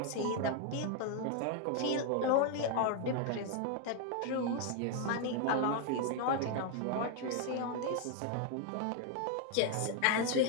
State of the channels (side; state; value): both; different; correlation 0.00